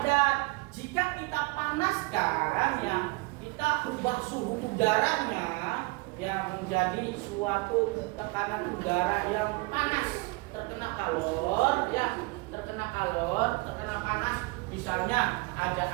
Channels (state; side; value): quieter; left; 25.7 dB